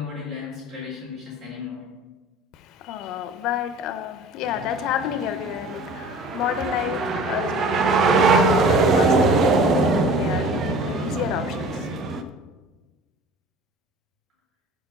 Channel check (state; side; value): normal; both; correlation 0.43